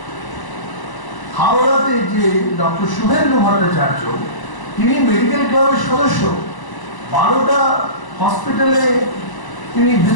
হাওড়াতে যে ডক্টর শুভেন্দু ভট্টাচার্য, তিনি মেডিকেল ক্লাবের সদস্য, 12টা হসপিটালে তিনি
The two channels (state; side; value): late; right; 1.0 ms